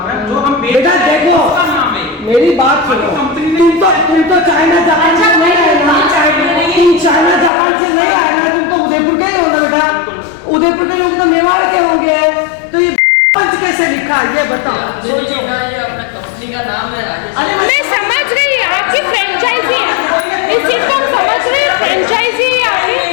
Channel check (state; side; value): drops out; right; at 7.5 s